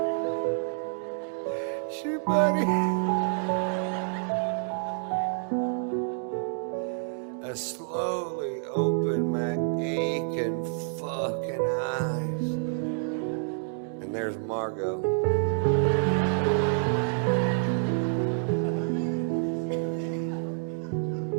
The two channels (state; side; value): silent; left; digital silence